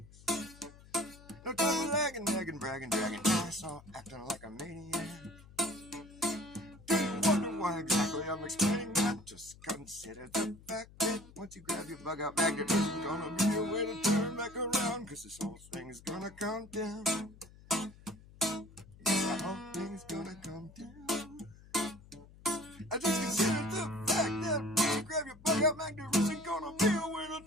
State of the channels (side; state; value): left; noise; hum, 21 dB below the sound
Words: No time for lagging, nagging, bragging, dragging ass, or acting like a maniac. Do you wonder why exactly I'm explaining that? Just consider the fact that once you grab your bug out bag, there isn't gonna be a way to turn back around, cause this whole thing is gonna come down. The whole thing is gonna come down. I just consider the fact that when you grab your bug out bag, there isn't gonna be a way to